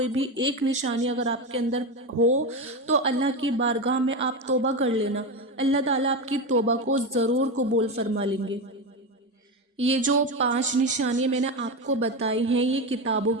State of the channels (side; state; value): both; normal; correlation 0.16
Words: بھی ایک نشانی اگر آپ کے اندر ہو تو اللہ کی بارگاہ میں آپ توبہ کر لینا، اللہ تعالیٰ آپ کی توبہ کو ضرور قبول فرما لیں گے۔ یہ جو 5 نشانیاں میں نے آپ کو بتائی ہیں یہ کتابوں